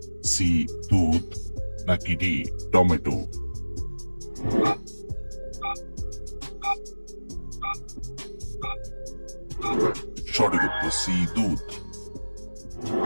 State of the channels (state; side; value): inverted; both; correlation -1.00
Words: সি দুধ, নাকি ডি টমেটো? সঠিক উত্তর সি দুধ।